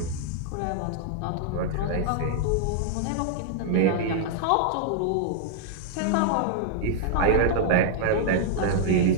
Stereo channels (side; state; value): both; different; correlation -0.01